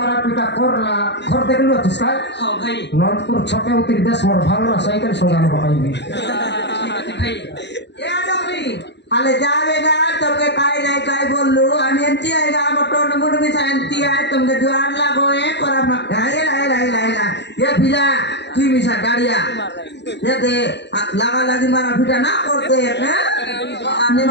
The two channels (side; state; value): right; late; 0.50 ms